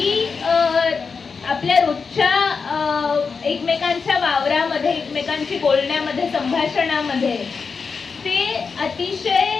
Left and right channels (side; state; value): right; quieter; 5.2 dB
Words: आपल्या रोजच्या एकमेकांच्या वावरामध्ये, एकमेकांशी बोलण्यामध्ये, संभाषणामध्ये ते